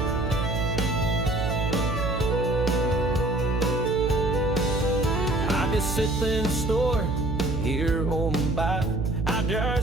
I just sit in the store here on by. I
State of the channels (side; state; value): right; noise; hum, 2 dB below the sound